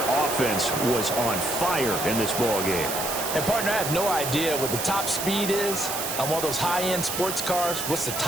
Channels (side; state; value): right; noise; hiss, 4 dB below the sound